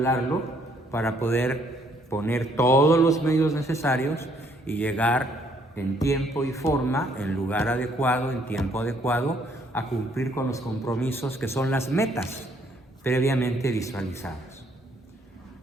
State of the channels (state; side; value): normal; both; correlation 0.66